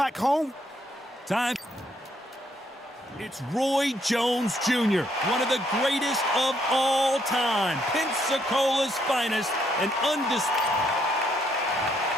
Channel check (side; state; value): both; normal; correlation 0.72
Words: home. Time. It's Roy Jones Jr., one of the greatest of all time. Pensacola's finest and undisputed.